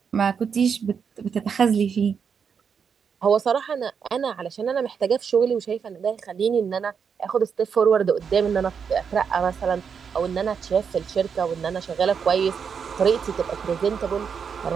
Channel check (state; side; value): quieter; left; 6.6 dB